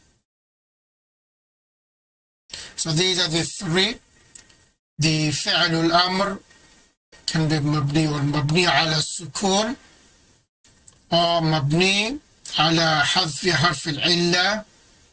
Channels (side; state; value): both; identical; correlation 1.00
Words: So these are the 3. The فعل الأمر can be مبني على السكون أو مبني على حذف حرف العلة